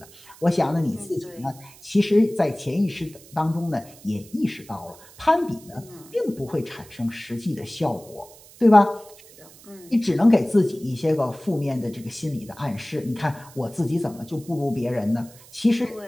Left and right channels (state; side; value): noise; right; hiss, 22 dB below the sound